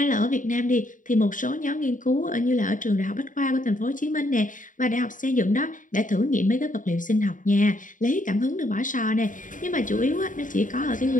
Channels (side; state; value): right; late; 0.38 ms